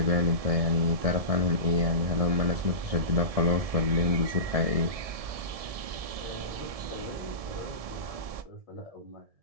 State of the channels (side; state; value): left; late; 1.7 ms